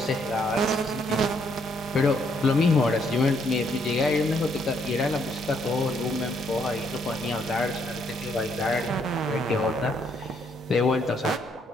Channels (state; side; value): normal; both; correlation 0.71